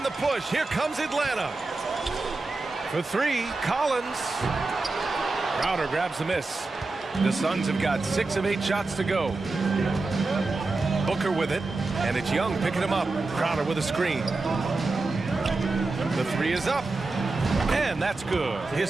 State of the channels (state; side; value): quieter; left; 3.4 dB